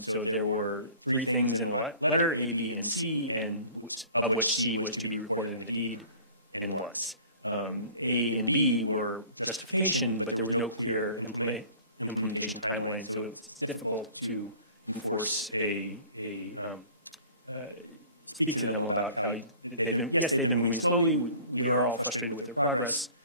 there were 3 things in the letter, A, B, and C, and of which C was to be recorded in the deed and was. A and B were justification, but there was no clear implementation timeline, so it's difficult to enforce speak to them about how they've been moving slowly. We are all frustrated with their progress,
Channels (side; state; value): both; inverted; correlation -0.47